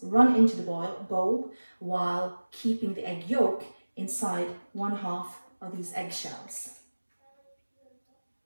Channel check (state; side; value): inverted; both; correlation -1.00